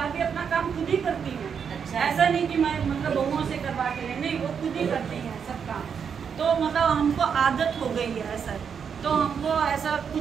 भी अपना काम खुद ही करती हैं। अच्छा, ऐसा नहीं कि मैं मतलब बहुओं से करवा के ले, नहीं, वो खुद ही करती हैं सब काम। तो मतलब हमको आदत हो गई है ऐसा, तो हमको ऐसा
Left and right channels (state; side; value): quieter; left; 6.9 dB